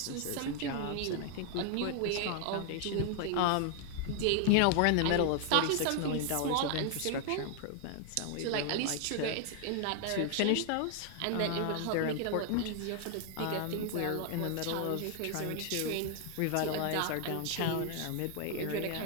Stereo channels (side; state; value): both; different; correlation 0.00